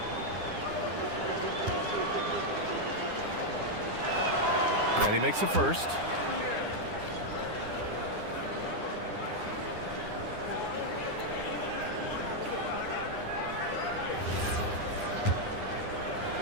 And he makes the first.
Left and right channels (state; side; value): late; left; 9.9 ms